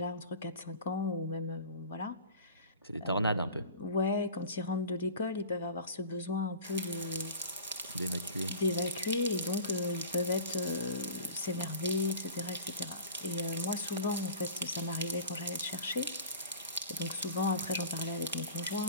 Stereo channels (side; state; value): both; inverted; correlation -0.39